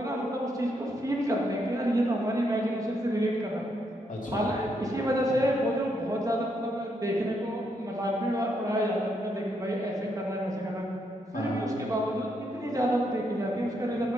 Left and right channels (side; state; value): both; normal; correlation 0.77